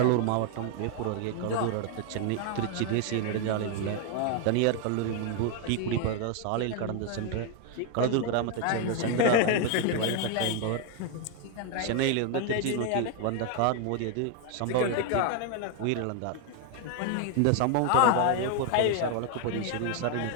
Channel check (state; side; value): different; both; correlation 0.01